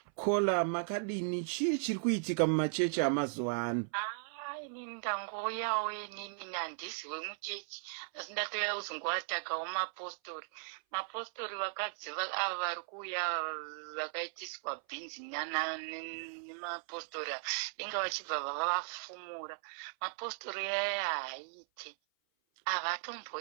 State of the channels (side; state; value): left; silent; 53 dB below the other